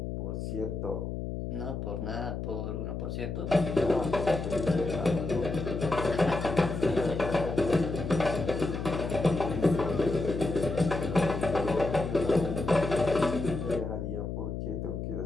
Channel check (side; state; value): left; noise; hum, 4 dB below the sound